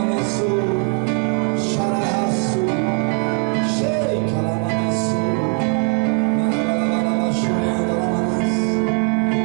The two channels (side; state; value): left; quieter; 36.8 dB